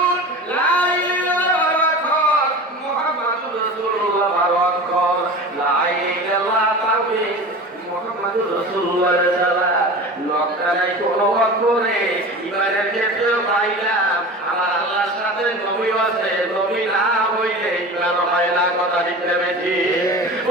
কোনো অক্ষরে ইমানের ক্ষেত্রে পাইলাম আমার আল্লাহর সাথে নবী আছে, নবী না হইলে ইমান হয় না। কথা ঠিক বেশি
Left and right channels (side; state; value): both; normal; correlation 0.34